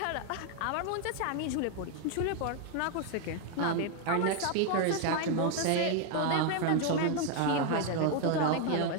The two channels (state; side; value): different; both; correlation 0.01